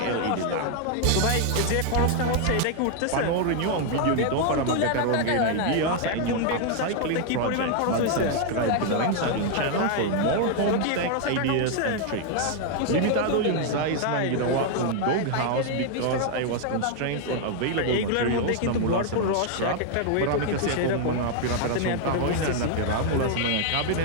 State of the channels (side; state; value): both; different; correlation 0.00